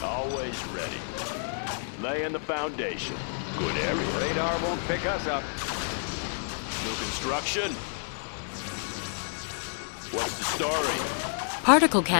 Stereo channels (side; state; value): right; silent; 58 dB below the other